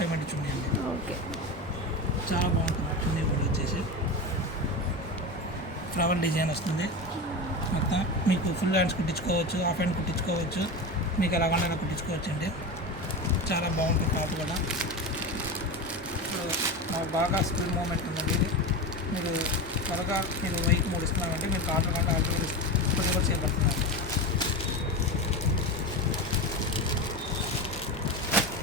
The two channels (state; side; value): normal; both; correlation 0.23